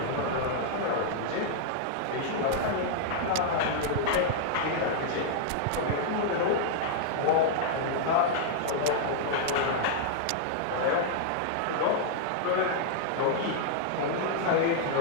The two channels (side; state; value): both; different; correlation -0.01